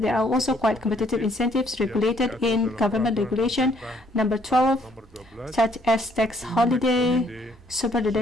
there are also quite competitive incentives regulated in Government Regulation number 12, such as tax holiday, super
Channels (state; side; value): normal; both; correlation 0.66